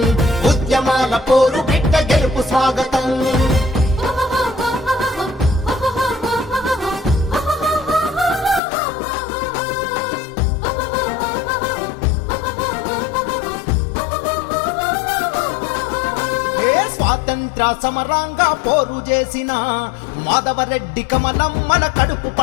ఉద్యమాల పోరు బిడ్డ గెలుపు స్వాగతం. స్వాతంత్ర సమరంగా పోరు చేసిన మాధవరెడ్డి కమలం మన కడుపు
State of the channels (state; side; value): drops out; right; at 8.6 s